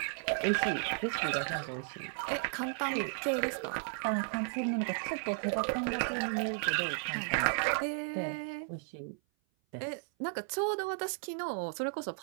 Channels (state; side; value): silent; left; 55 dB below the other